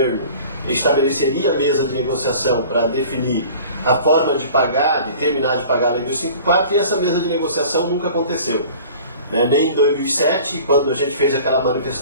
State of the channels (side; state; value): both; inverted; correlation -0.45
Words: estabeleceria a mesa de negociação para definir a forma de pagar, de terminar de pagar a Lei 254, e essa mesa de negociação nunca aconteceu. Nem em 2007, quando a gente fez aquela